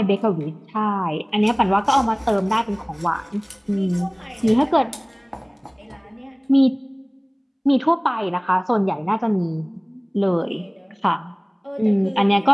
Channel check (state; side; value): identical; both; correlation 1.00